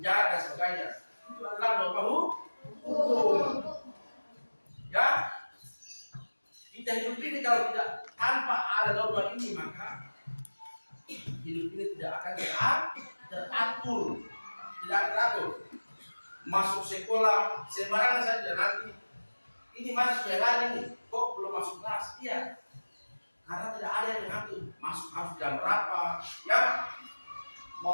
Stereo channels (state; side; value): inverted; both; correlation -1.00